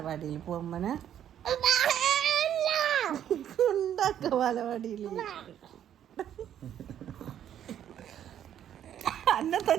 പോകുമ്പോ ഉണ്ടാക്ക ബാലവാടിയിൽ അന്നെ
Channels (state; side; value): quieter; left; 10.2 dB